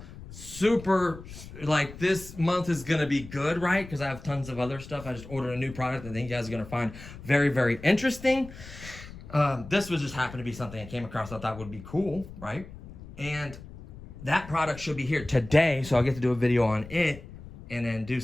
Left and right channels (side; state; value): left; noise; rumble, 15 dB below the sound